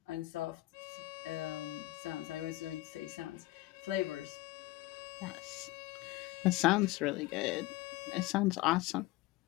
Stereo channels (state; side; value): quieter; right; 18.8 dB